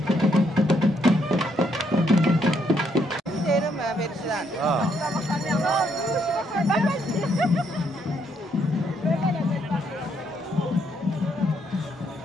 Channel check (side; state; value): both; normal; correlation 0.73